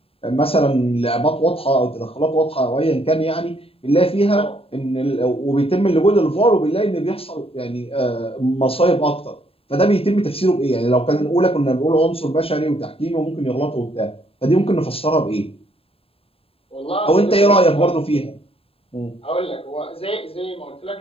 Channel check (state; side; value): late; right; 0.27 ms